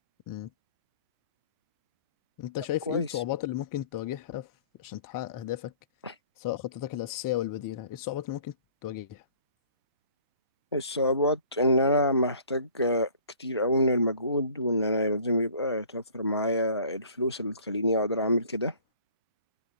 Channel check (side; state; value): both; inverted; correlation -0.51